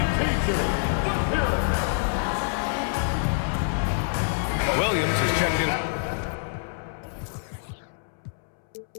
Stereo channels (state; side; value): silent; right; 61 dB below the other